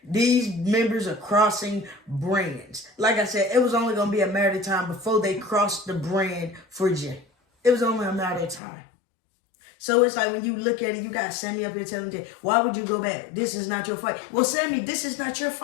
These members are crossing brands. Like I said, it was only going to be a matter of time before they crossed the brand for Jay. It was only a matter of time. So it's like when you look at it, you got Sami up here telling Jay, why would you go back? This is not your fight. Well, Sami, this is not your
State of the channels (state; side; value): drops out; right; at 8.6 s